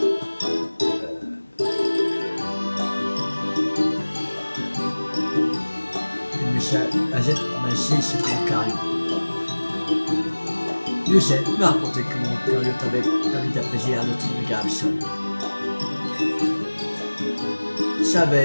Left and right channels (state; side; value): inverted; both; correlation -1.00